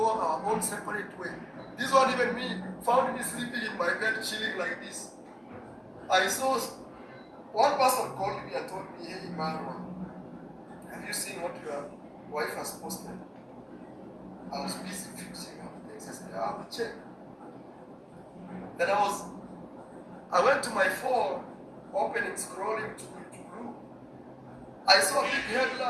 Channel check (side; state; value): both; identical; correlation 1.00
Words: our own separate way. This one, even me, found me sleeping in my bed, chilling like this. I saw one person called me and told me, hey, Iammarwa, have you seen what your wife has posted? I was busy fixing up things. I said, I will check. Then I went to my phone, opening, scrolling to blue. I saw a big